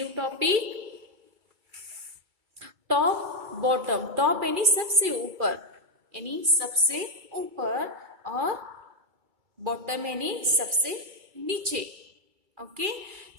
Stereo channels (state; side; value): late; left; 2.3 ms